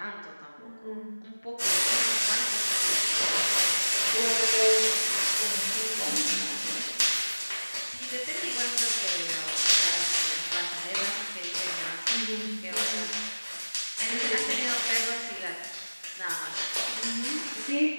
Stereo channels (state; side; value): inverted; both; correlation -1.00